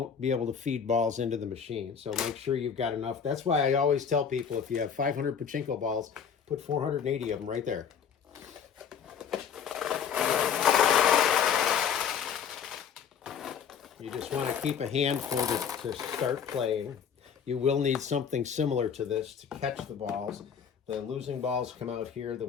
be able to feed balls into the machine. So make sure you've got enough. That's why I always tell people, if you have 500 Pachinko balls, put 480 of them right there. You just want to keep a handful to start playing. You will need something similar to this to catch the balls. The losing balls come out here, the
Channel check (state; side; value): quieter; right; 7.4 dB